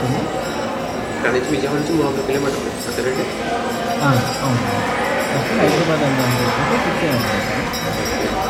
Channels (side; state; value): both; identical; correlation 1.00